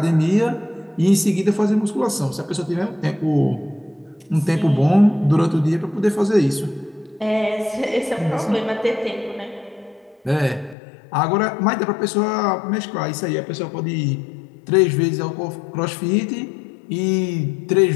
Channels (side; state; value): right; drops out; at 10.8 s